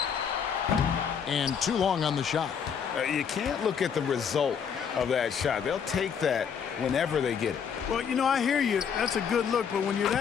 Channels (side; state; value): right; quieter; 7.2 dB